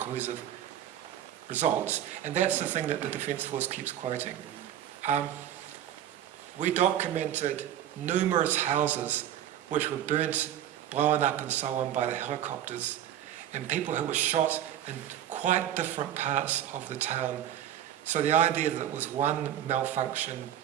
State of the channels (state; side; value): quieter; left; 11.1 dB